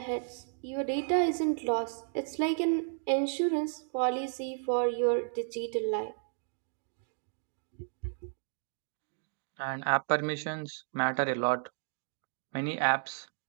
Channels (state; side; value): silent; left; digital silence